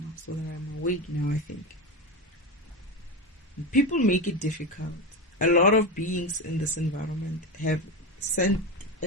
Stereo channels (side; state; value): both; normal; correlation 0.17